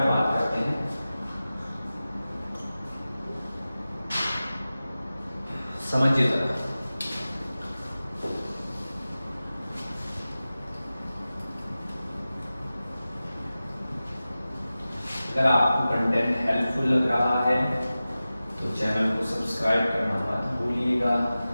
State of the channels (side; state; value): both; inverted; correlation -0.96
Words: बात करते हैं. समझिए जरा. अगर आपको कंटेंट हेल्पफुल लग रहा है तो चैनल को सब्सक्राइब करना मत भूलिएगा,